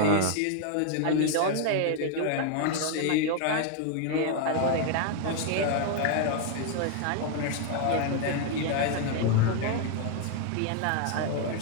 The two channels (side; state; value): both; different; correlation 0.00